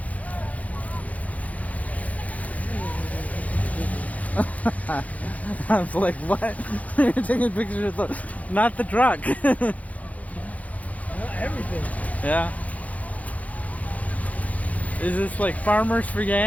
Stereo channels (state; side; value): late; right; 0.070 ms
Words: I was like, what? You're taking pictures of the, not the truck. Everything. Yeah. Is this like Farmers for